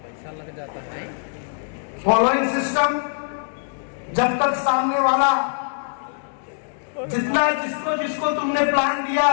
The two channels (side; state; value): right; silent; digital silence